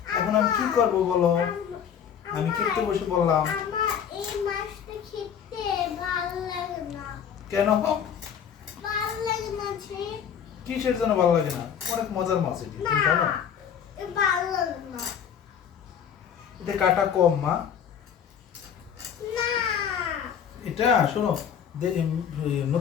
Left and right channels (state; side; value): quieter; right; 8.3 dB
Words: এখন আমি কি করব বলো? আমি খেতে বসে বললাম। আমার এই মাছটা খেতে ভালো লাগে না। কেন? ভালো লাগে না যে। কিসের জন্য ভালো লাগে না? অনেক মজার মাছ এটি, তুমি জানো? ভালো লাগে না। এটা কাটা কম মা। না। এটা শোনো,